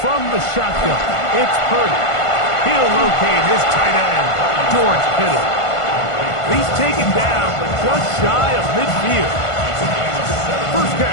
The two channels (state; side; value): late; right; 1.5 ms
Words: the shotgun, it's Purdy. He'll locate his tight end, George Kittle. He's taken down, but just shy of midfield. First